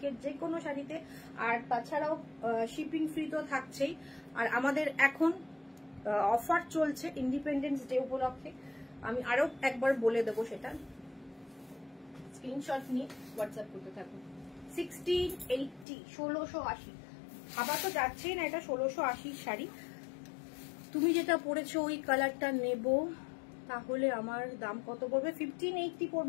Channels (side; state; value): right; drops out; at 15.9 s